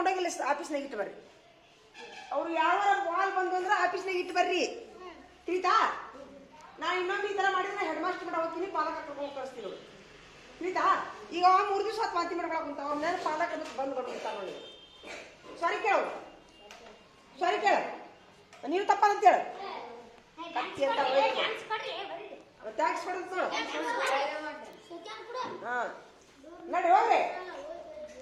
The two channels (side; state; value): both; identical; correlation 1.00